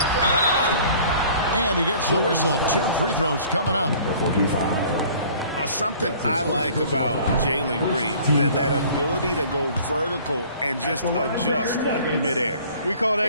And he gets the whistle. 2 free throws coming up. Something I like about Jalen Green, that ability to go vertical and just adjust midair. We call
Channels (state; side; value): inverted; both; correlation -0.50